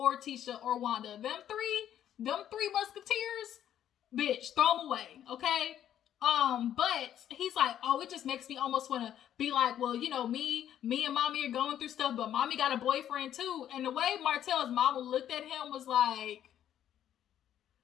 Tisha or Wanda. Them three musketeers, bitch, throw them away, okay? But he's like, oh, it just makes me almost want to be like, well, you know, me and mommy are going through stuff, but mommy got a boyfriend too. And the way Martell's mama looked at him was like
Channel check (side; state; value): right; quieter; 10.7 dB